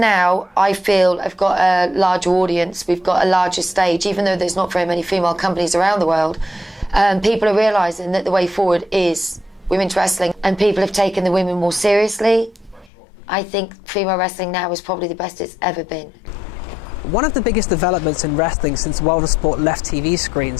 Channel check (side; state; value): right; drops out; at 12.9 s